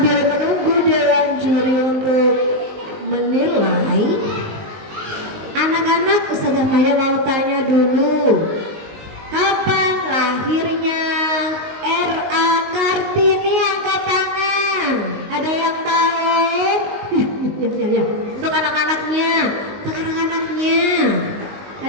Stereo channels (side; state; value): left; late; 19 ms